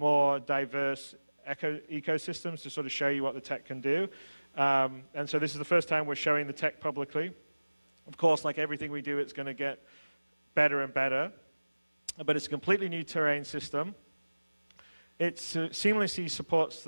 diverse ecosystems to sort of show you what the tech can do. And so this is the first time we're showing the tech publicly. Of course, like everything we do, it's going to get better and better. But it's a completely new terrain system. It seamlessly supports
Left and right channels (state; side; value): inverted; both; correlation -1.00